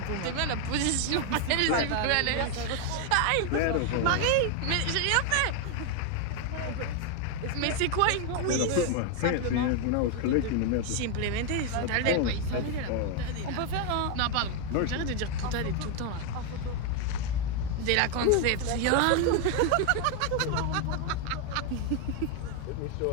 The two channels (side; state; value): both; different; correlation 0.01